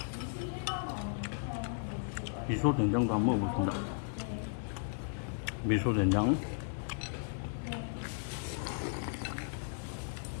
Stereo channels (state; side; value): silent; right; digital silence